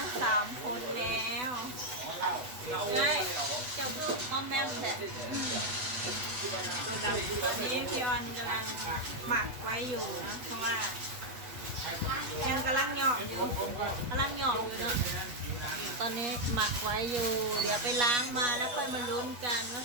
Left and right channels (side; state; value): left; late; 8.1 ms